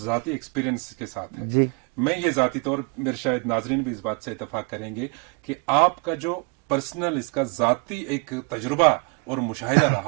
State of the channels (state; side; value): quieter; left; 32.5 dB